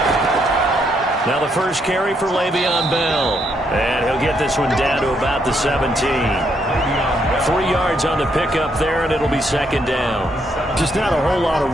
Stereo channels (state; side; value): normal; both; correlation 0.75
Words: Now the first carry for Le'Veon Bell. And he'll get this one down to about the 17. 3 yards on the pickup there, and it'll be second down. Just not a whole lot